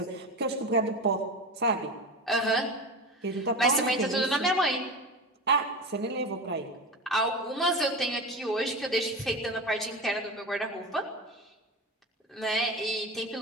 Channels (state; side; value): normal; both; correlation 0.26